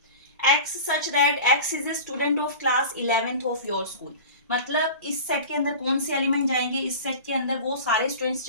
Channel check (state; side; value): inverted; both; correlation -0.34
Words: x such that x is a student of class 11th of your school, मतलब इस सेट के अंदर कौन से एलिमेंट जाएंगे, इस सेट के अंदर वो सारे स्टूडेंट्स